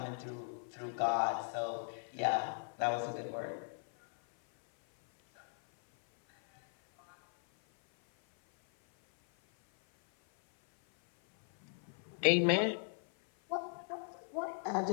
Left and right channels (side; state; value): right; silent; 53 dB below the other